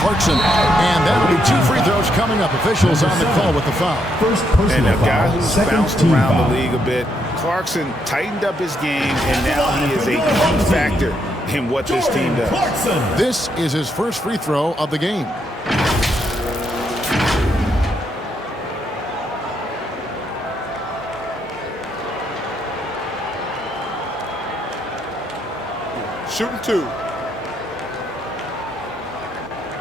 and that'll be 2 free throws coming up. Officials on the call with the foul. First personal And a guy foul. who's Second bounced team around foul. the league a bit. Clarkson tightened up his game, and now he is a key factor in what this team does. This is his first free throw of the game. Shooting 2.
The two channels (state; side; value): normal; both; correlation 0.77